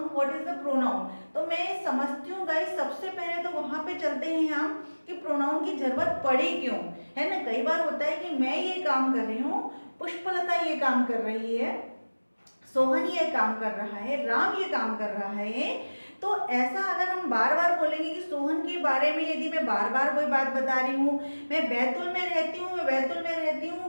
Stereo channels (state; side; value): inverted; both; correlation -1.00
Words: what is the pronoun? तो मैं समझती हूँ guys, सबसे पहले तो वहाँ पे चलते हैं हम कि प्रोनाउन की जरूरत पड़ी क्यों, है ना। कई बार होता है कि मैं ये काम कर रही हूँ, पुष्पलता ये काम कर रही है, सोहन ये काम कर रहा है, राम ये काम कर रहा है। तो ऐसा अगर हम बार बार बोलेंगे कि सोहन के बारे में, यदि मैं बार बार कोई बात बता रही हूँ, मैं बैतूल में रहती हूँ, मैं बैतूल में रहती